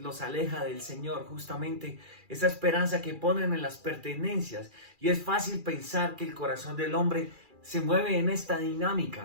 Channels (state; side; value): late; left; 2.4 ms